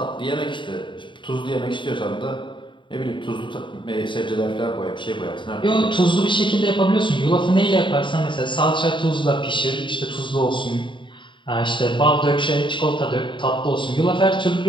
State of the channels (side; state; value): right; late; 0.23 ms